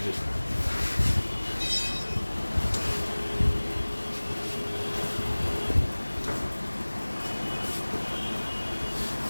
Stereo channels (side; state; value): both; inverted; correlation -1.00